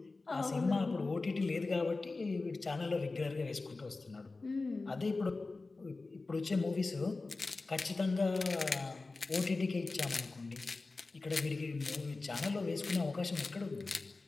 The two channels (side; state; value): right; quieter; 3.6 dB